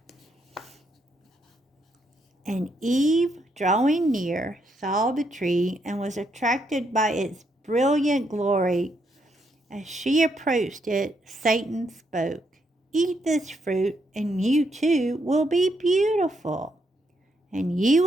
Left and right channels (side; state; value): both; normal; correlation 0.77